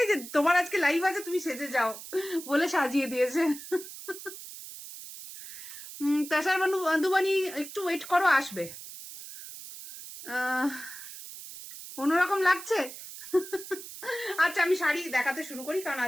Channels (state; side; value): noise; right; hiss, 13 dB below the sound